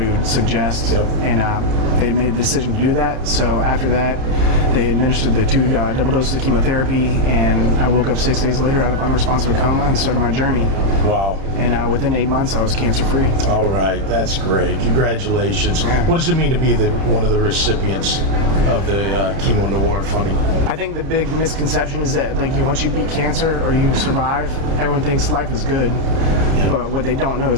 he would suggest. Yep. And they made the decision to do that. So after that, they administered the 2 double doses of chemotherapy, and I woke up 6 days later out of unresponsive coma and started my journey. Wow. And within 8 months, I was cancer-free. All right, that's great. Congratulations. Yeah. What does it mean to be one of the recipients of the Chemo Noir funding? I think the big misconception is that once you beat cancer or you survive, everyone thinks life is good. Yeah. But what they don't know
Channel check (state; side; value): late; left; 31 ms